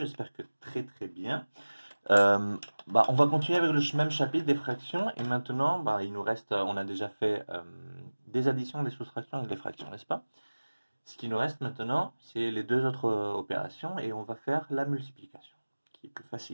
que très bien. On va continuer avec le même chapitre des fractions et maintenant, il nous reste, on a déjà fait des additions, des soustractions et des fractions, n'est-ce pas? Ce qui nous reste maintenant, c'est les deux autres opérations et on va faire la multiplication, qui est plus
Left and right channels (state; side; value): inverted; both; correlation -1.00